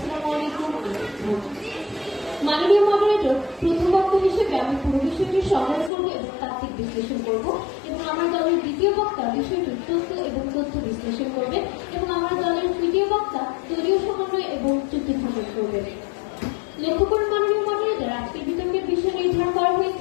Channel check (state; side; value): drops out; right; at 5.9 s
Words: আলাইকুম। মাননীয় মডারেটর, প্রথম বক্তা হিসেবে আমি পুরো বিষয়টি সংগ্রহ করবো এবং তাত্ত্বিক বিশ্লেষণ করব, এবং আমার দলের দ্বিতীয় বক্তা বিষয়টির তথ্য বিশ্লেষণ করবেন, এবং আমার দলের তৃতীয় বক্তা দলীয় সমন্বয় এবং চুক্তি স্থাপন করবেন। লক্ষ্য করুন মাননীয় মডারেটর, আজকের বিতর্কের বিষয় নির্ধারণ করা